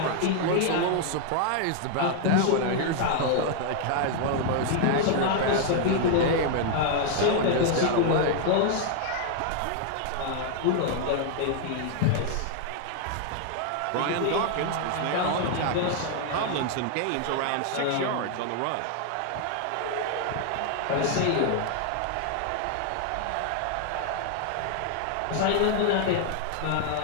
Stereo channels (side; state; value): both; different; correlation 0.00